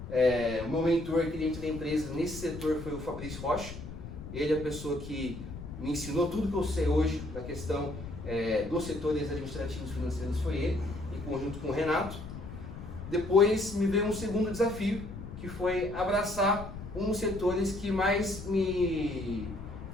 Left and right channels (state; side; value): noise; left; rumble, 11 dB below the sound